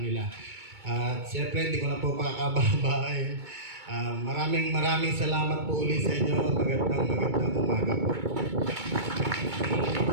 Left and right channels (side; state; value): left; late; 2.2 ms